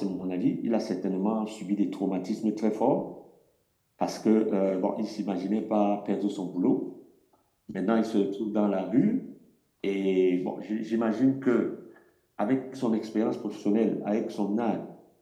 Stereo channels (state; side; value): identical; both; correlation 1.00